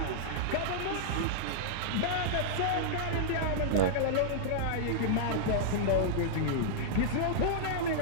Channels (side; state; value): both; different; correlation -0.02